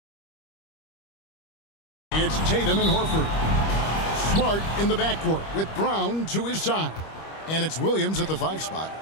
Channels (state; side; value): late; right; 25 ms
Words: It's Tatum and Horford. Smart in the backcourt with Brown to his side. And it's Williams at the 5 spot.